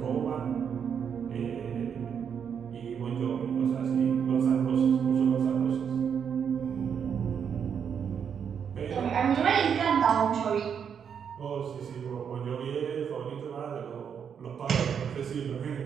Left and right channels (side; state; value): left; quieter; 7.5 dB